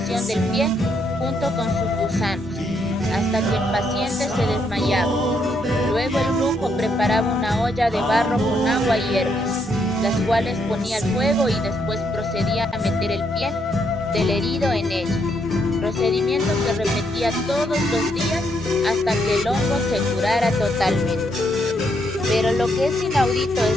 del pie junto con sus gusanos, hasta que el paciente se desmayaba. Luego el brujo preparaba una olla de barro con agua y hierbas, las cuales ponía al fuego y después procedía a meter el pie del herido en ella, procedimiento que repetía todos los días hasta que el hongo se curara totalmente. Pero lo que es inaudito es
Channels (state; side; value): normal; both; correlation 0.75